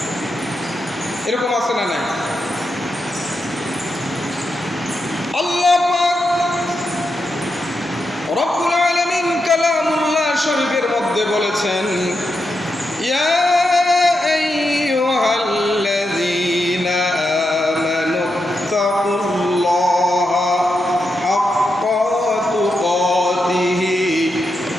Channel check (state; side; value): normal; both; correlation 0.86